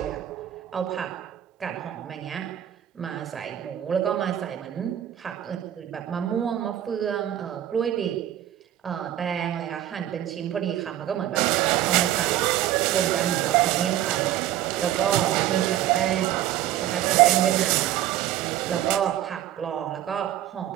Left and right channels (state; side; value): quieter; left; 12.2 dB